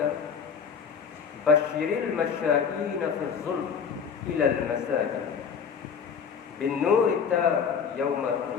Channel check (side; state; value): right; quieter; 6.7 dB